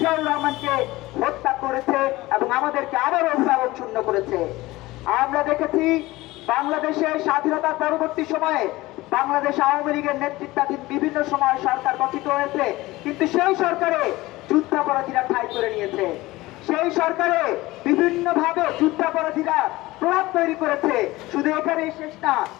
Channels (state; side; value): quieter; right; 19.2 dB